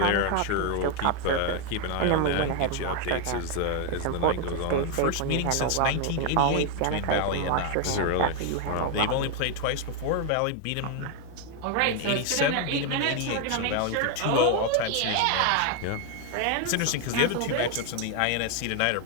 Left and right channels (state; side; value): different; both; correlation 0.01